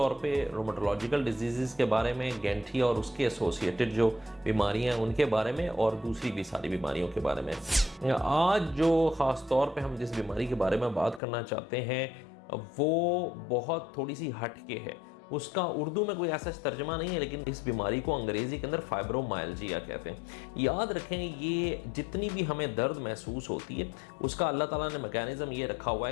پہ روماٹولوجیکل ڈیزیزز کے بارے میں، گینٹھی اور اس کے ایسوسیٹڈ جو بیماریاں ہیں ان کے بارے میں، اور دوسری بھی ساری بیماریوں کے بارے میں۔ آج جو خاص طور پہ ہم جس بیماری کے بارے میں بات کرنا چاہتے ہیں وہ بہت تھوڑی سی ہٹ کے ہے۔ اس کا اردو میں کوئی ایسا ترجمہ نہیں ہے، لیکن اس بیماری کو انگریزی کے اندر فائبرومائلجیا کہتے ہیں۔ یاد رکھیں، یہ جتنی بھی ہمیں درد محسوس ہوتی ہے اس کا اللہ تعالیٰ نے میکینزم یہ رکھا ہوا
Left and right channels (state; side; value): drops out; right; at 11.2 s